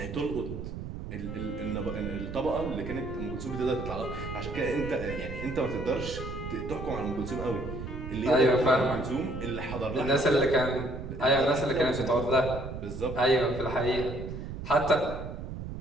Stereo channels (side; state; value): right; noise; rumble, 8 dB below the sound